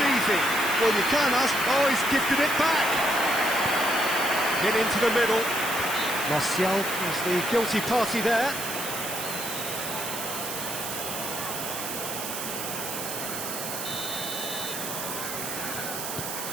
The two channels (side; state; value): right; noise; hiss, 5 dB below the sound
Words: easy. Well, you can't ask... Oh, he's gifted it back. Get into the middle. Martial is the guilty party there.